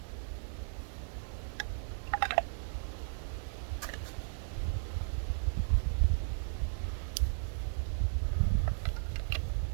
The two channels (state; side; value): silent; left; digital silence